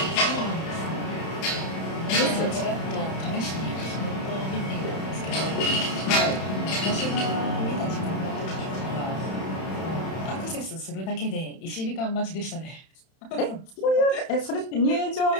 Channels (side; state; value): right; late; 31 ms